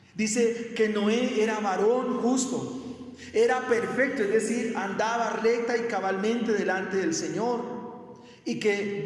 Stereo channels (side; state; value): both; identical; correlation 1.00